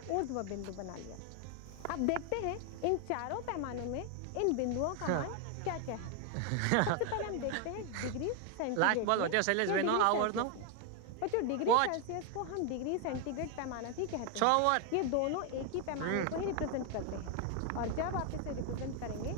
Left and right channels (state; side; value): different; both; correlation 0.01